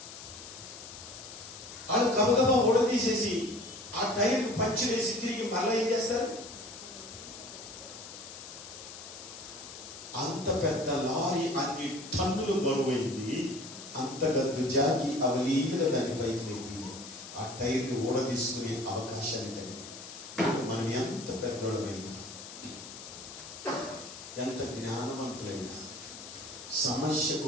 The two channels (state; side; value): noise; left; hiss, 13 dB below the sound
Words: వాళ్ళు గబగబా ఊడదీసేసి ఆ టైర్ పంచులు వేసి తిరిగి మళ్ళీ ఏం చేస్తారు, అంత పెద్ద లారీ అన్ని టన్నులు బరువైంది, అంత గద్దు జాకి అవలీలుగా దాని పైకి లేపి ఆ టైర్ని ఊడదీసుకునే అవకాశాన్ని కలిగి. మనం ఎంత పెద్దోళమైనా, ఎంత జ్ఞానవంతులైనా,